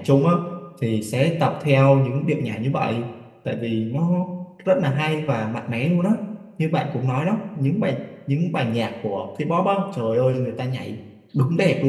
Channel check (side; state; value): both; identical; correlation 1.00